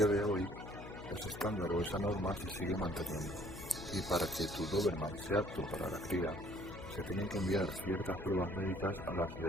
de hoy, ese estándar o esa norma se sigue manteniendo, y para que tu Doberman sea apto para la cría, se tienen que enviar ciertas pruebas médicas a la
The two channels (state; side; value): noise; left; hum, 12 dB below the sound